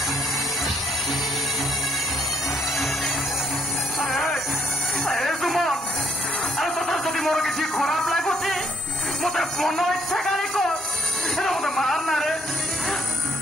যদি মোর কিছু খারাপ লাগুছি মতো মন ইচ্ছা গাড়ি কর মতো মার না রে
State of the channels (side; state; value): both; normal; correlation 0.69